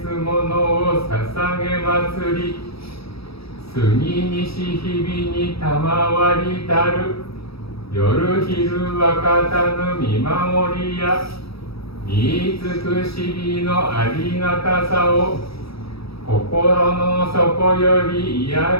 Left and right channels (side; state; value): right; late; 0.77 ms